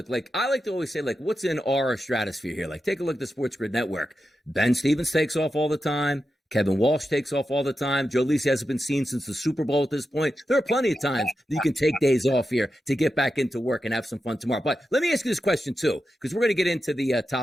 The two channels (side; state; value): both; normal; correlation 0.89